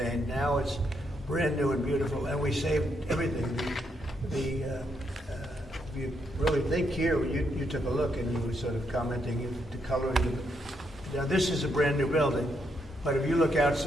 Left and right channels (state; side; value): normal; both; correlation 0.78